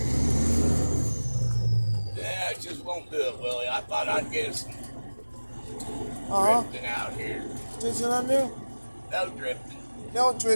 Yeah, I just won't do it, Willie. I thought I'd get some drifting out here. Drifting on there? No drifting. No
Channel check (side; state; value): both; inverted; correlation -1.00